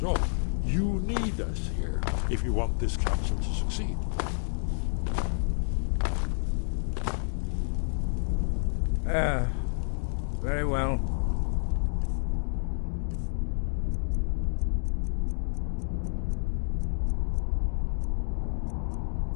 all. You need us here if you want this council to succeed. Very well.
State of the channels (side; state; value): right; silent; digital silence